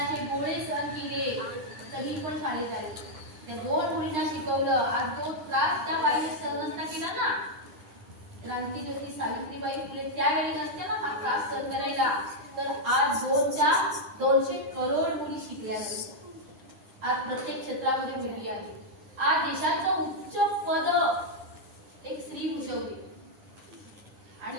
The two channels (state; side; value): late; left; 9.3 ms